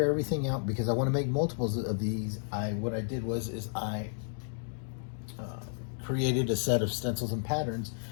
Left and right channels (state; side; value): silent; right; digital silence